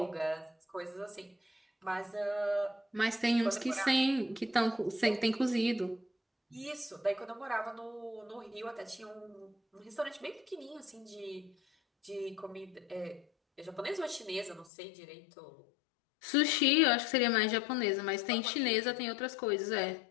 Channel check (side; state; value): right; drops out; at 14.7 s